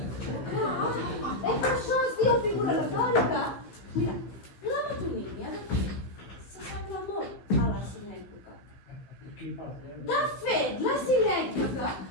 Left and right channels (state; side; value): late; right; 15 ms